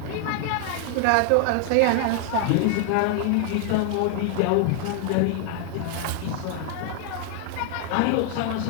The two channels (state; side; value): different; both; correlation 0.00